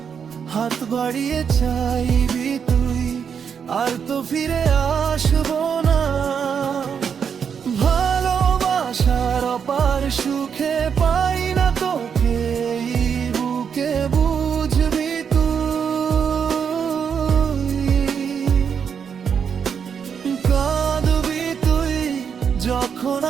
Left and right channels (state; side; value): quieter; left; 7.1 dB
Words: হাত বাড়িয়ে চাইবি তুই, আর তো ফিরে আসবো না। ভালোবাসার অপার সুখে পাই না তোকে এই বুকে, বুঝবি তুই। কাঁদবি তুই, যখন